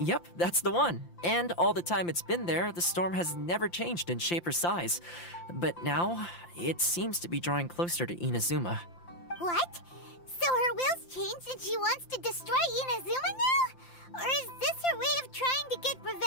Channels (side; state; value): right; late; 5.8 ms